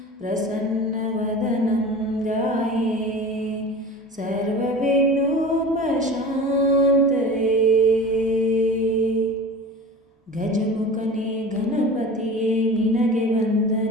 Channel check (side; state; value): both; normal; correlation 0.36